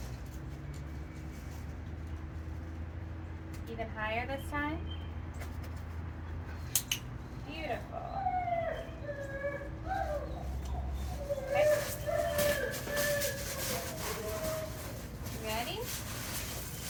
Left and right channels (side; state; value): both; identical; correlation 1.00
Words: Even higher this time. Beautiful. Okay. Ready?